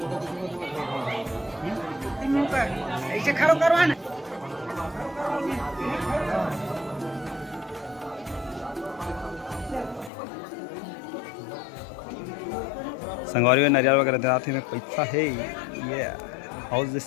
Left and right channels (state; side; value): drops out; right; at 10.1 s